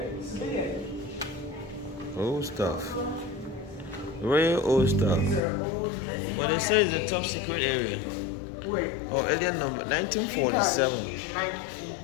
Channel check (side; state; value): right; drops out; at 5.4 s